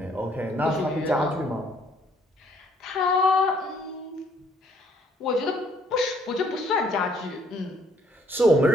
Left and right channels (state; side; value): normal; both; correlation 0.64